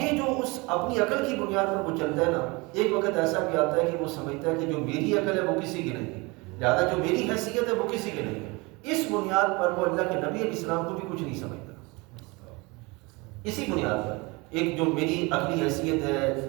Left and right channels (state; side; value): quieter; left; 26.0 dB